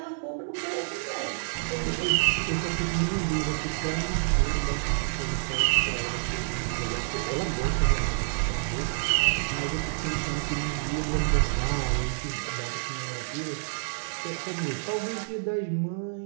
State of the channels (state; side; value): silent; left; digital silence